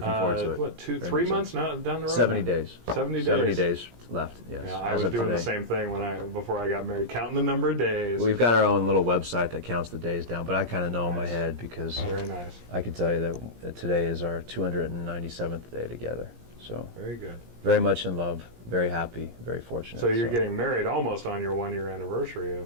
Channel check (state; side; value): late; left; 17 ms